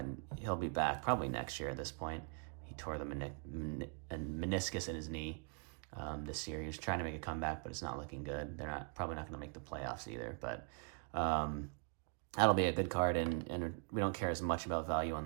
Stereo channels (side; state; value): left; quieter; 38.8 dB